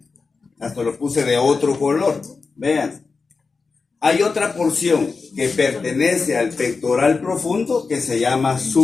Hasta lo puse de otro color. Vean. Hay otra porción que pertenece al pectoral profundo que se llama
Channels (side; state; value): right; quieter; 4.5 dB